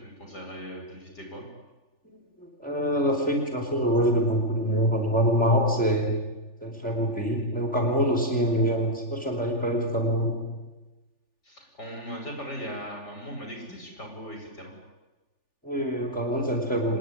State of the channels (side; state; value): right; late; 3.4 ms